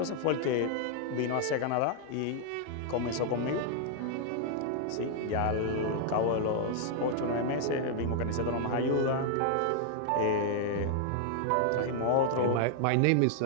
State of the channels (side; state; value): both; different; correlation 0.00